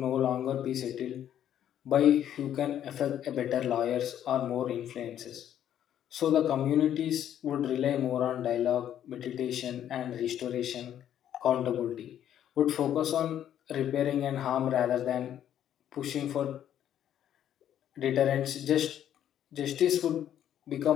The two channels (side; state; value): right; quieter; 10.6 dB